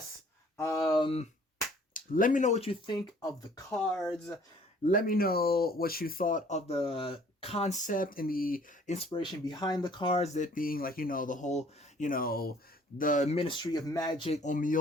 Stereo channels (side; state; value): both; normal; correlation 0.56